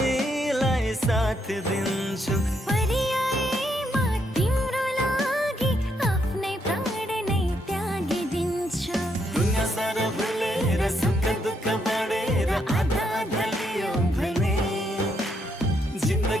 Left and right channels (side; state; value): both; normal; correlation 0.76